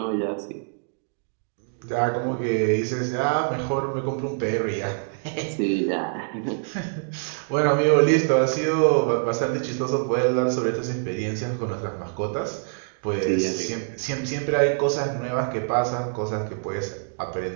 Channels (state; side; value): silent; left; digital silence